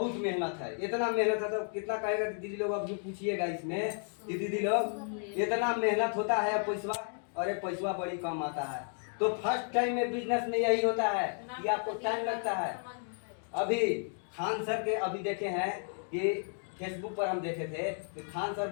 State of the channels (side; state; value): right; silent; 56 dB below the other